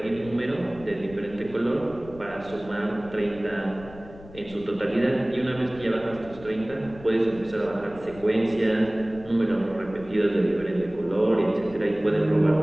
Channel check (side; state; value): left; noise; rumble, 18 dB below the sound